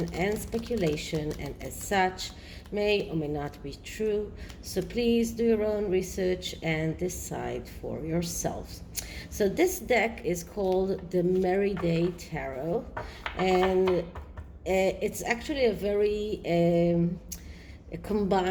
and speculation, and as such, may or may not be true. So please do your own research and decide for yourselves. So this deck is called the MERRYDAY Tarot, and it's actually a very a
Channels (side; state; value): both; identical; correlation 1.00